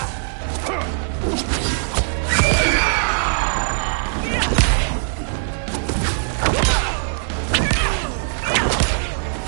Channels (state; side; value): silent; left; digital silence